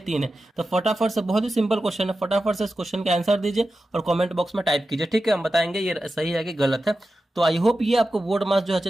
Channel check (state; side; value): normal; both; correlation 0.92